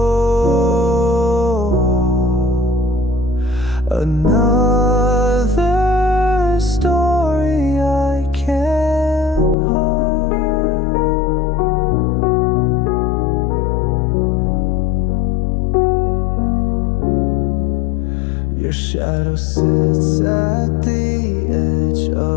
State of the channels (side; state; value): right; drops out; at 9.6 s